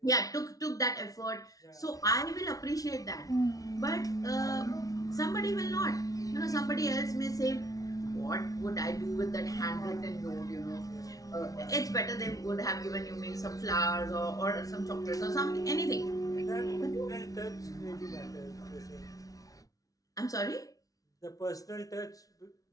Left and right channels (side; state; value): right; late; 0.18 ms